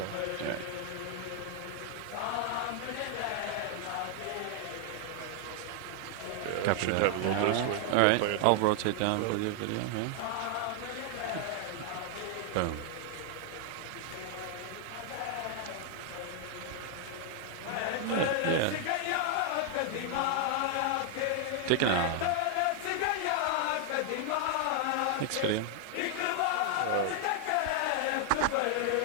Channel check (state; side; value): different; both; correlation 0.00